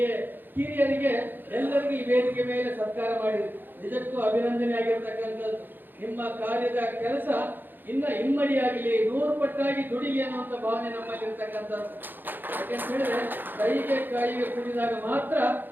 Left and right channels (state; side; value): late; left; 0.092 ms